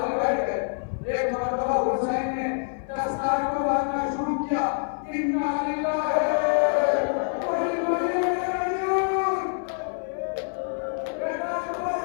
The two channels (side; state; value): right; silent; 58 dB below the other